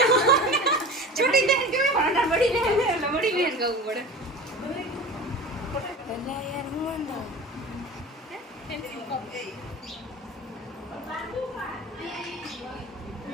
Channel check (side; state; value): both; normal; correlation 0.35